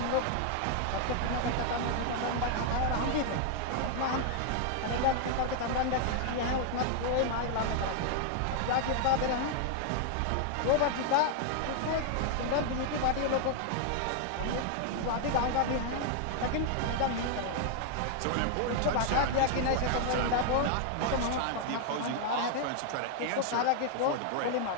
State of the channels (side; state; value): both; different; correlation 0.00